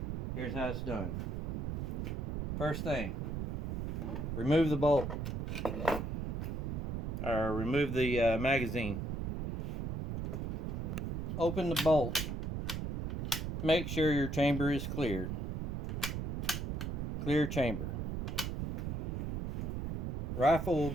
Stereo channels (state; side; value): noise; right; rumble, 2 dB below the sound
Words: Here's how it's done. First thing, remove the bolt, or remove the magazine. Open the bolt. Make sure your chamber is clear. Clear chamber. Rifle will